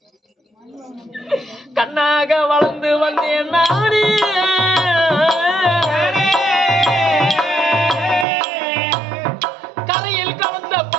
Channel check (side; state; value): left; drops out; at 8.2 s